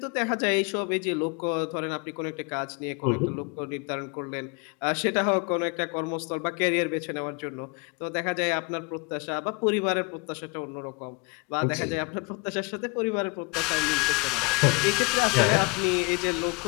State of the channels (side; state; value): right; quieter; 29.4 dB